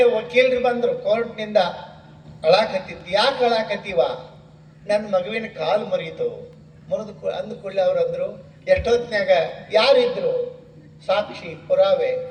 ವಕೀಲರು ಬಂದ್ರು ಕೋರ್ಟ್ನಿಂದ. ಅಳಾಕತ್ತಿತ್ತು. ಯಾಕೆ ಅಳಾಕತ್ತೀವ? ನನ್ನ ಮಗುವಿನ ಕಾಲು ಮುರಿಯಿತು. ಮುರಿದು ಅಂದ ಕೂಡಲೇ ಅವ್ರು ಅಂದ್ರು, ಎಷ್ಟೊತ್ತಿನಾಗ ಯಾರಿದ್ರು ಸಾಕ್ಷಿ ಪುರಾವೆ?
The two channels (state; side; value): identical; both; correlation 1.00